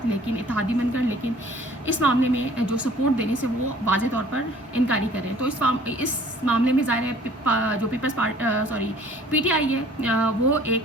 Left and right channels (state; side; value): normal; both; correlation 0.52